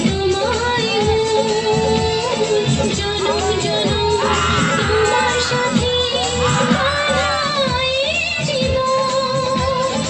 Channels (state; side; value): identical; both; correlation 1.00